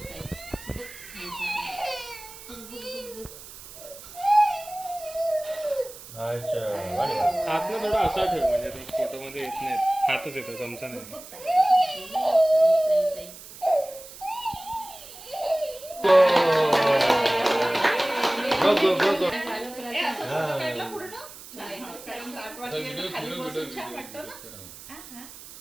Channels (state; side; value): noise; right; hiss, 16 dB below the sound